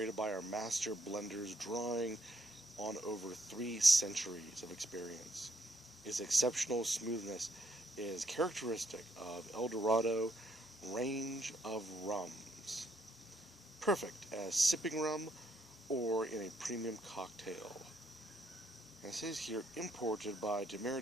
by our master blenders, drawing on over 3 centuries of experience. Its exceptional smoothness is characteristic of El Dorado range of rums, perfect as sipping rum or in a premium cocktail. And it says here, imported by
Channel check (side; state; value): both; normal; correlation 0.73